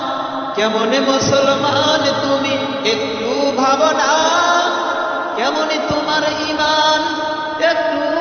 কেমন মুসলমান তুমি একটু ভাবো না, কেমন তোমার ঈমান একটু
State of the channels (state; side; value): identical; both; correlation 1.00